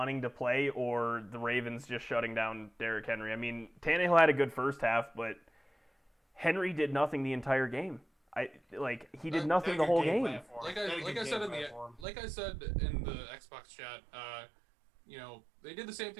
to play, or the Ravens just shutting down Derrick Henry. I mean, Tannehill had a good first half, but Henry did nothing the entire game. He did nothing the whole game. Like I said in the Xbox chat, they did the same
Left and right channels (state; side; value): drops out; left; at 12.1 s